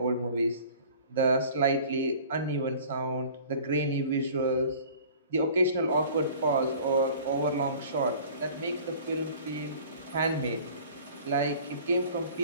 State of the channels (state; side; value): inverted; both; correlation -0.47